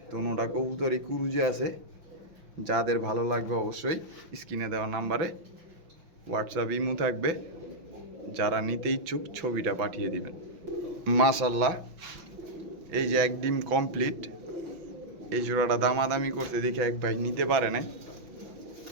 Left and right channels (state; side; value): late; left; 6.0 ms